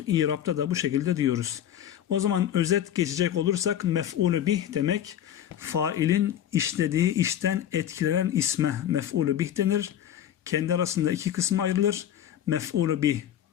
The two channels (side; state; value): right; quieter; 10.6 dB